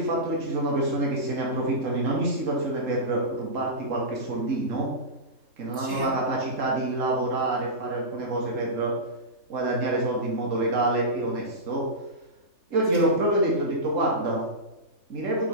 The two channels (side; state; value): left; late; 3.3 ms